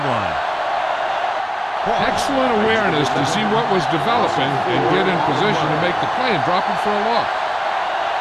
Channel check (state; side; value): identical; both; correlation 1.00